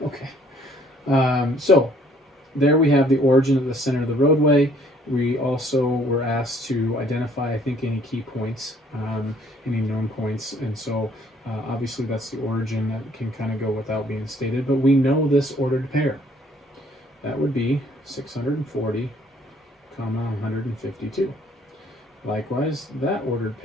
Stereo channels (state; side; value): normal; both; correlation 0.61